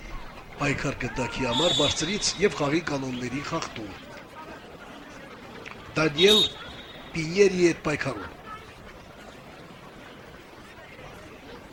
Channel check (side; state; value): both; identical; correlation 1.00